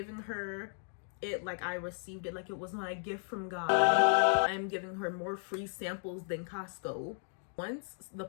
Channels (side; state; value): right; silent; 55 dB below the other